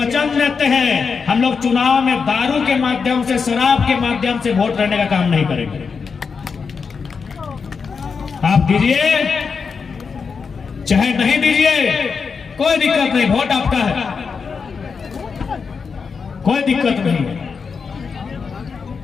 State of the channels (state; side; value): quieter; right; 5.5 dB